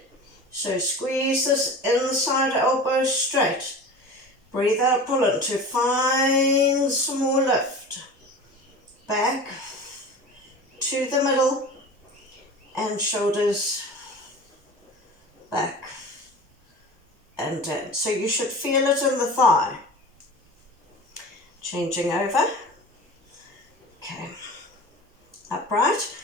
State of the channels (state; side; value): normal; both; correlation 0.35